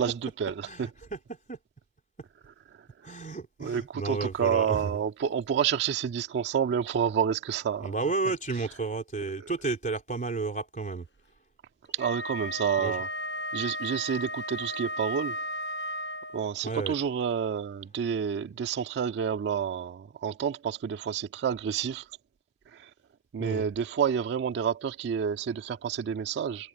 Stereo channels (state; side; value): quieter; left; 6.0 dB